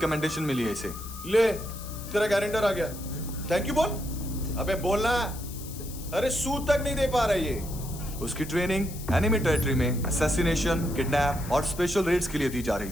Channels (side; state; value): left; noise; hiss, 14 dB below the sound